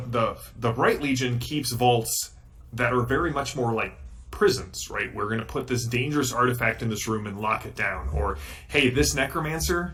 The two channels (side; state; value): both; identical; correlation 1.00